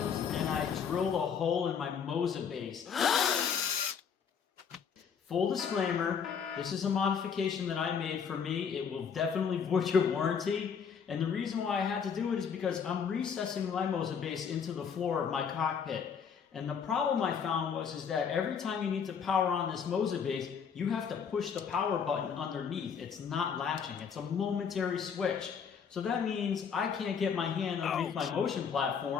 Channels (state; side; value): quieter; right; 6.9 dB